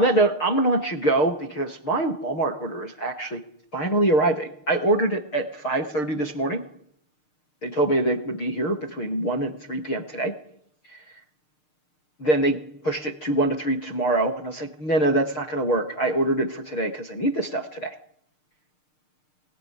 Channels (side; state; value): right; late; 6.6 ms